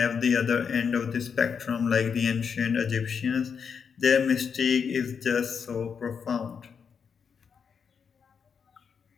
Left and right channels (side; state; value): right; quieter; 6.5 dB